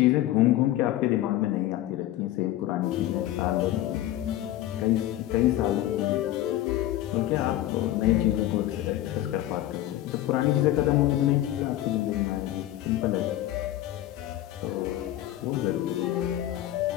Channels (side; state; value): right; quieter; 14.1 dB